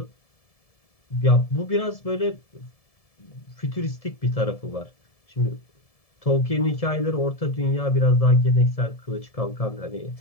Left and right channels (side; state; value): right; late; 1.7 ms